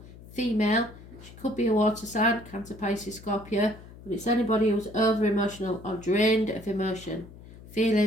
female. She could be a water sign, Cancer, Pisces, Scorpio, but it's anybody who's over-emotional or drained of emotion,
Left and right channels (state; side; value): noise; left; hum, 18 dB below the sound